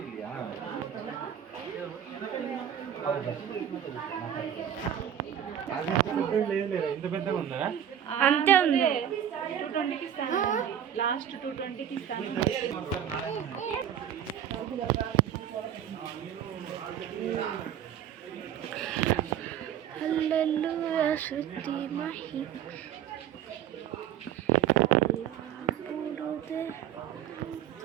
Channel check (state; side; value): quieter; left; 9.8 dB